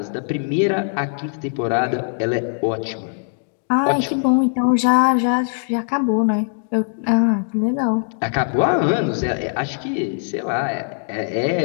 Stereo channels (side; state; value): right; silent; 62 dB below the other